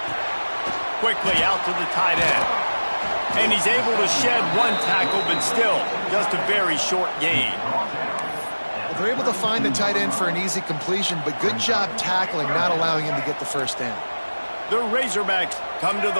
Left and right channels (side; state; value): both; inverted; correlation -1.00